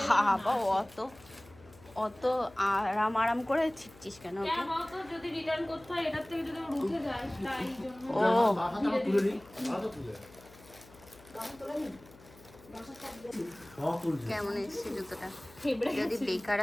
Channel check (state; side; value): noise; left; hum, 23 dB below the sound